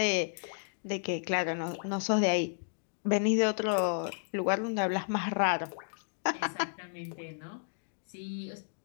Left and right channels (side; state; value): right; silent; digital silence